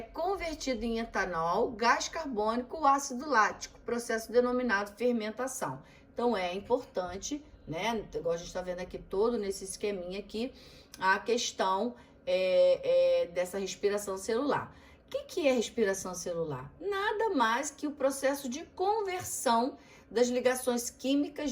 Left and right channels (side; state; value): both; identical; correlation 1.00